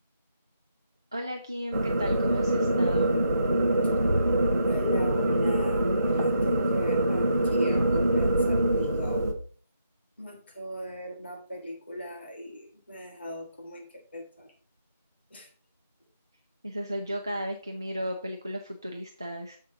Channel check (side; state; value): both; inverted; correlation -0.78